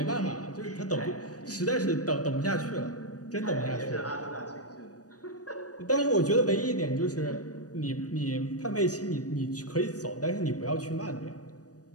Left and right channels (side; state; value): right; late; 0.67 ms